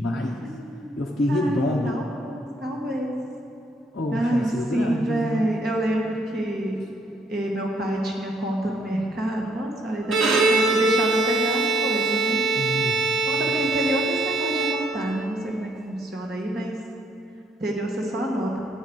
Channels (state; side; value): normal; both; correlation 0.69